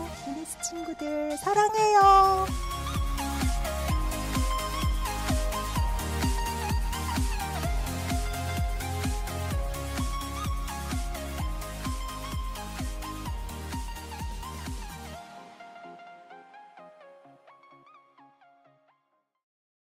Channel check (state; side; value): identical; both; correlation 1.00